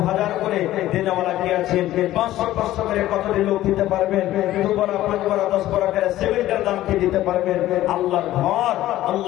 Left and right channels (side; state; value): right; quieter; 14.6 dB